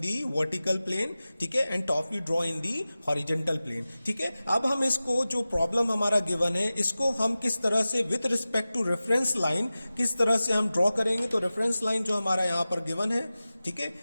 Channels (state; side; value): inverted; both; correlation -0.96